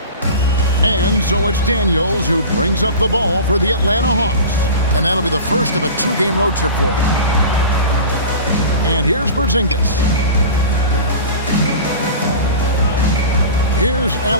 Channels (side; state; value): both; inverted; correlation -0.34